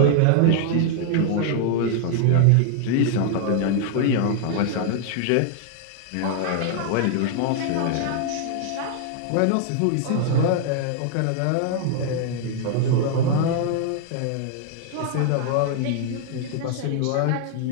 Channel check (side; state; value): both; different; correlation 0.00